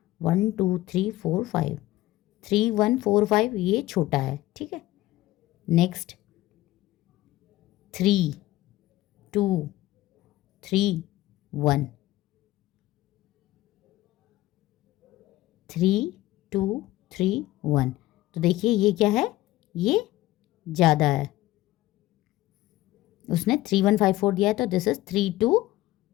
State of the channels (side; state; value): right; quieter; 16.6 dB